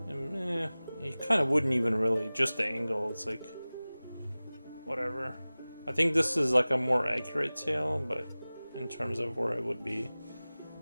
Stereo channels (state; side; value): inverted; both; correlation -0.98